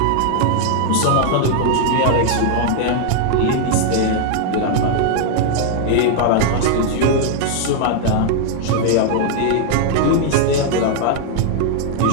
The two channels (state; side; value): different; both; correlation 0.00